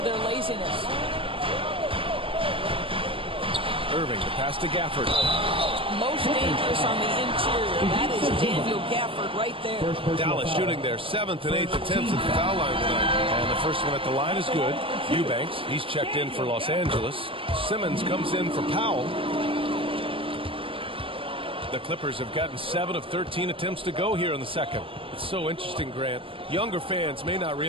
their laziness. Irving, the pass to Gafford. Most dangerous on the interior. That is Daniel Gafford right there. Dallas shooting their 7th and 8th attempts at the foul line tonight. And the first one at the line is good. Eubanks, he's checked in for Los Angeles. Simmons comes in for Powell. The Clippers have gotten 7 of 13 attempts to go here in the second. It's so interesting, Grant. Younger fans may not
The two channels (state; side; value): late; left; 0.26 ms